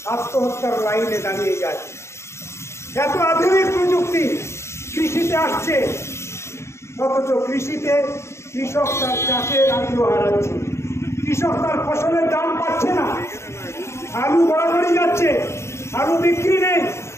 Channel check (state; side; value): late; right; 0.13 ms